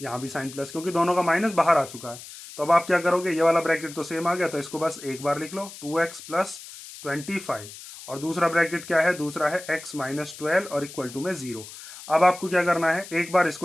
यहाँ भी साइन प्लस, क्योंकि दोनों का माइनस बाहर आ चुका है। तो अब आप क्या करोगे, ये वाला ब्रैकेट तो सेम आ गया तो इसको बस एक बार लिख लो 2x प्लस 25 और दूसरा ब्रैकेट क्या है, दूसरा है x माइनस 12 और इक्वल टू में 0। अब आपको क्या करना है, एक बार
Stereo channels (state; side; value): noise; left; hiss, 15 dB below the sound